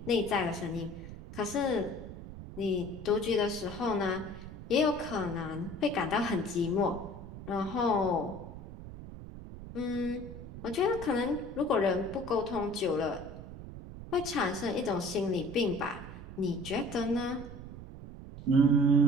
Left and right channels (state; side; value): noise; right; rumble, 12 dB below the sound